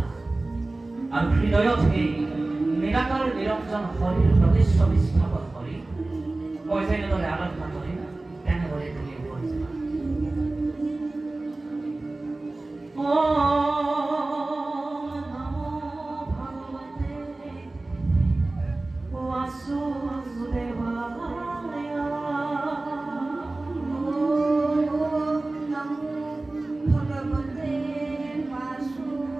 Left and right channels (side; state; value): left; quieter; 3.0 dB